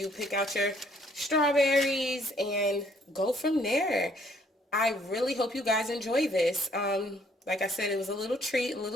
pick out your strawberries and go from there. I really hope you guys enjoy this. Like I said, it was a little treat, a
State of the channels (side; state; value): both; normal; correlation 0.65